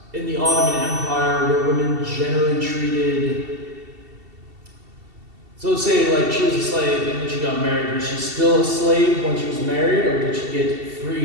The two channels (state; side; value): late; left; 2.7 ms